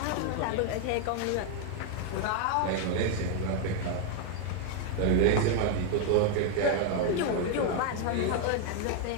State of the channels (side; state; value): both; different; correlation 0.00